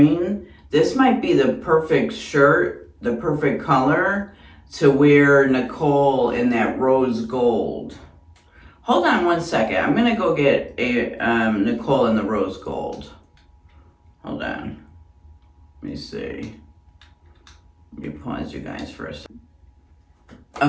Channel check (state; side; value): identical; both; correlation 1.00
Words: this might be the perfect shirt, the perfect color. to wear Nicole in that rose gold. Hold on one second. I'm gonna go get a Nicole in the rose gold. Hold on. Let me see. Let me pause you guys for a second.